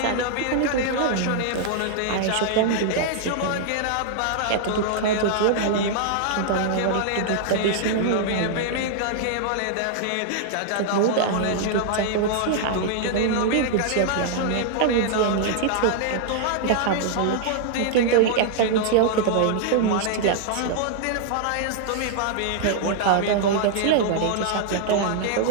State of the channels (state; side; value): different; both; correlation -0.01